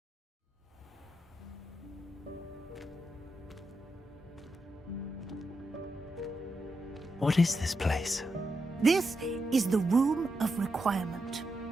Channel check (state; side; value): normal; both; correlation 0.86